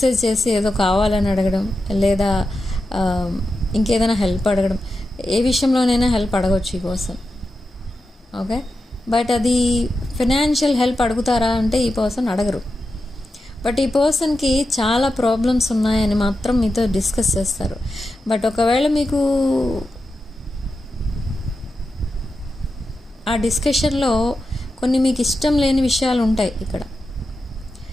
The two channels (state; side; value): normal; both; correlation 0.90